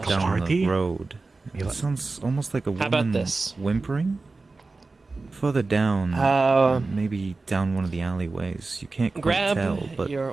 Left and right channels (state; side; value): quieter; left; 3.7 dB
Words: like a down party? the road. It sounds almost like a How about woman this? whimpering. Further down, maybe down one of the alleyways. You can't quite Grab tell, but